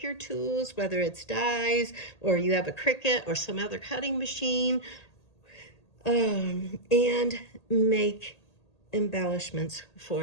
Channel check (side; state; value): right; late; 1.8 ms